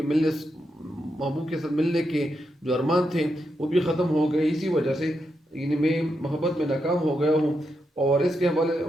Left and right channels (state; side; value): normal; both; correlation 0.84